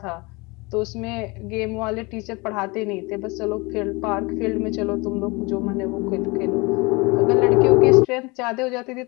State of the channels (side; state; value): right; quieter; 26.0 dB